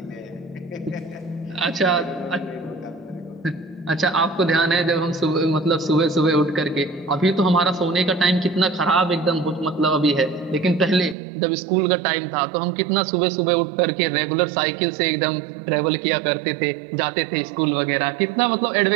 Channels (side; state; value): left; drops out; at 11.2 s